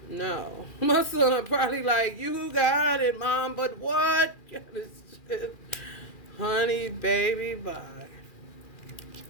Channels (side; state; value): right; late; 2.4 ms